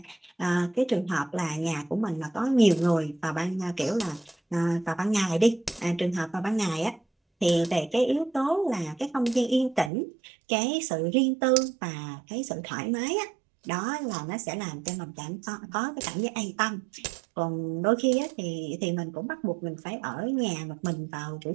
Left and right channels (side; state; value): left; drops out; at 9.9 s